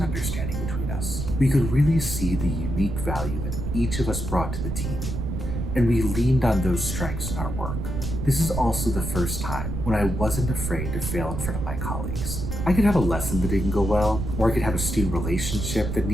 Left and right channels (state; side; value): noise; right; rumble, 4 dB below the sound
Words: understanding between us. We could really see the unique value that each of us brought to the team, and we leaned on those strengths in our work. This is also the first time when I wasn't afraid to fail in front of my colleagues. I could have a lesson that didn't go well, or I could have a student relationship that